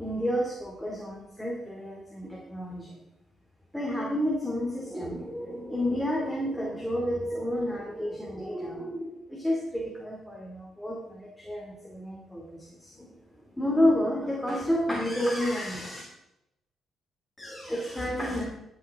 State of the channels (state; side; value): normal; both; correlation 0.86